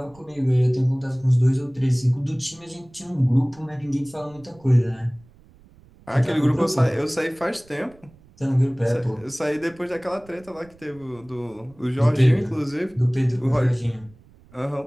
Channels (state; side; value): noise; right; rumble, 26 dB below the sound